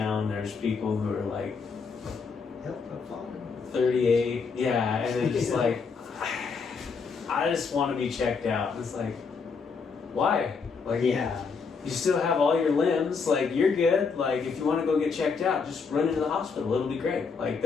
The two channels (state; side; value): quieter; right; 5.2 dB